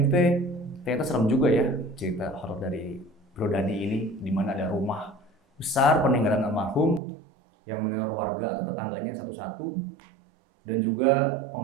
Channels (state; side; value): drops out; left; at 7.0 s